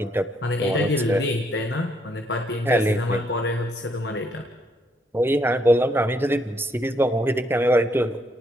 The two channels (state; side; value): normal; both; correlation 0.72